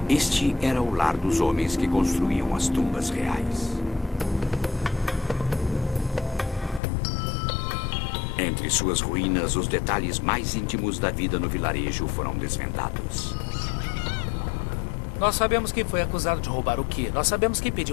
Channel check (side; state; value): right; drops out; at 6.8 s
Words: Este era o lar dos homens que construíam as tumbas reais. Entre suas ruínas, os detalhes mais íntimos da vida no vilarejo foram desvendados. Nós sabemos quem foi acusado de roubar o quê. Nós sabemos quem